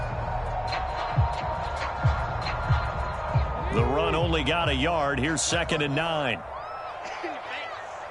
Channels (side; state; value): both; identical; correlation 1.00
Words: The run only got a yard. Here's 2nd and 9.